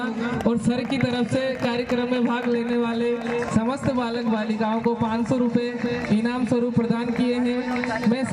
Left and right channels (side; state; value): both; identical; correlation 1.00